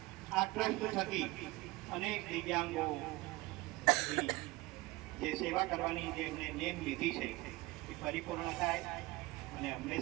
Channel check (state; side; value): quieter; left; 20.7 dB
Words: આ ટ્રસ્ટ થકી અનેક દિવ્યાંગો જે સેવા કરવાની જે એમને નેમ લીધી છે એ પરિપૂર્ણ થાય, અને